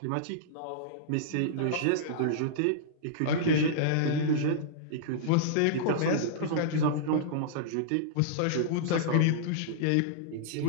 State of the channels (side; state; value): both; different; correlation -0.02